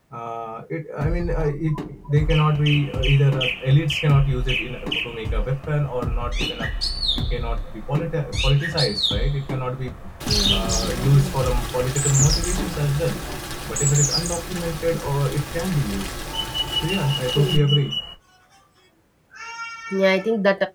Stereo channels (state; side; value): identical; both; correlation 1.00